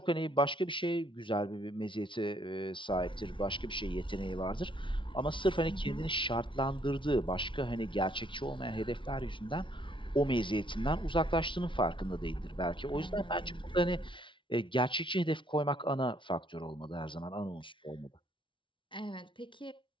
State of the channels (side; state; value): right; late; 0.24 ms